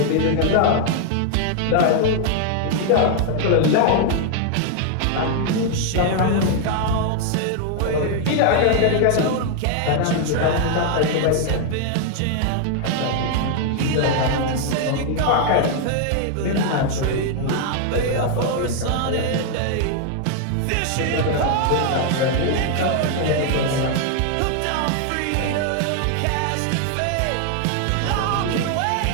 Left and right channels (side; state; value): both; different; correlation 0.00